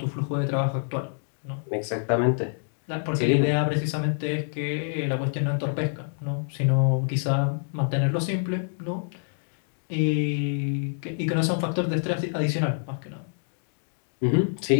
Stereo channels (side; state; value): right; silent; digital silence